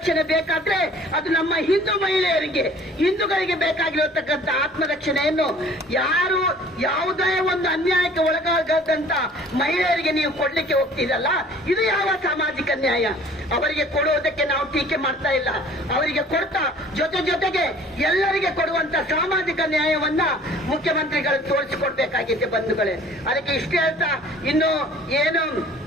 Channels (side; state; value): both; normal; correlation 0.51